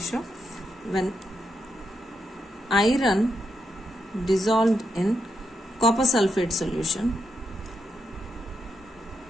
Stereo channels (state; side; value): normal; both; correlation 0.82